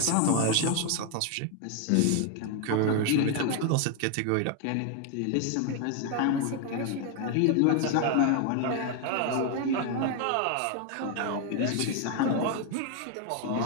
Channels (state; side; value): different; both; correlation 0.01